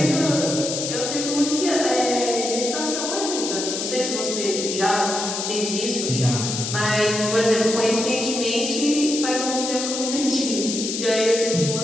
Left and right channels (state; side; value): noise; left; hiss, 3 dB below the sound